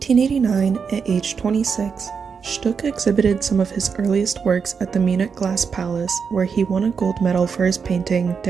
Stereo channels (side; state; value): left; quieter; 6.0 dB